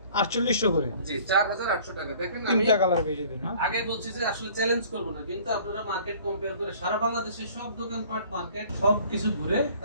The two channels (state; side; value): inverted; both; correlation -0.52